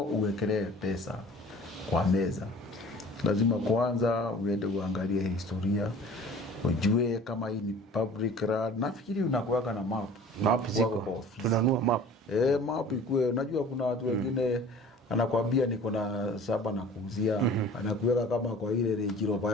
uwekelee pesa kwa meza, lazima kwanza uende uangalie historia, ujue kama hii ni public land. Nafikiri unakuweka na map ziko, tunanua map. Map ikue, unajua kuna watu wengine anakuambia niko na saba na kuuzia, anakuweka kama kwa ile rejiroba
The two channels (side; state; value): both; normal; correlation 0.45